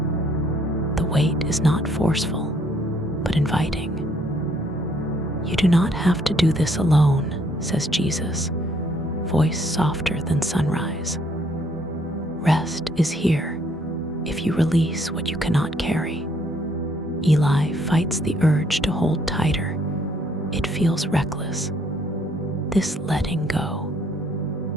The weight is not forceful, but inviting. "You do not have to do this alone," says Jesus, voice softer than sunrise. "Rest is here if you release what you cannot carry." Eli fights the urge to hold tighter. It feels reckless, this letting go,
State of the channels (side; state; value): both; normal; correlation 0.66